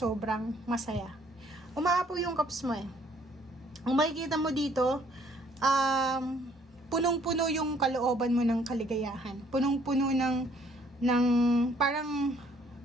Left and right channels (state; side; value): normal; both; correlation 0.62